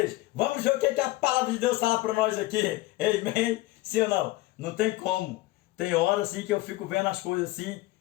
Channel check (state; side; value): quieter; right; 18.9 dB